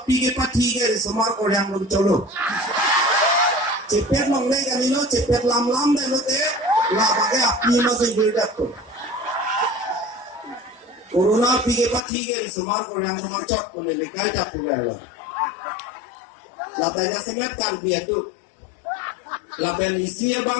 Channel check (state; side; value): drops out; right; at 12.0 s